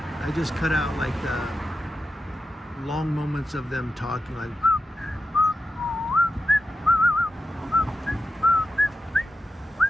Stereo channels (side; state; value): both; normal; correlation 0.89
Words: just cut out like the long moments of them talking, like